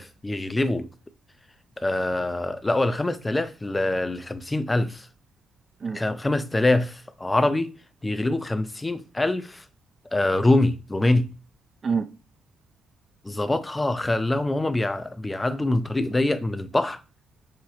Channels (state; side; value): normal; both; correlation 0.96